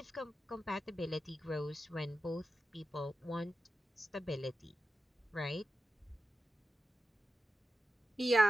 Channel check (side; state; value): both; normal; correlation 0.91